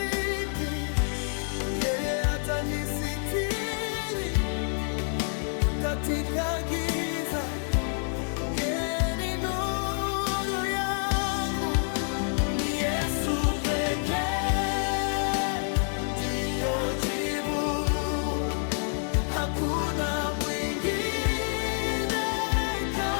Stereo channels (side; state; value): right; silent; 59 dB below the other